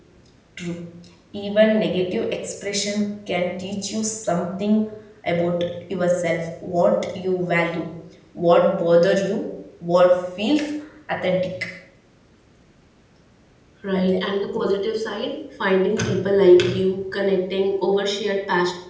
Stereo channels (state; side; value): identical; both; correlation 1.00